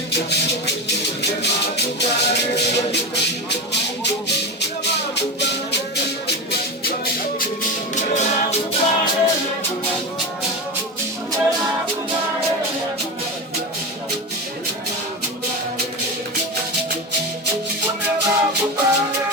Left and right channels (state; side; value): normal; both; correlation 0.21